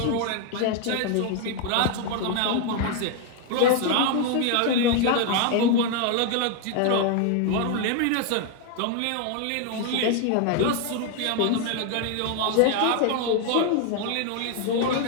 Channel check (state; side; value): different; both; correlation 0.00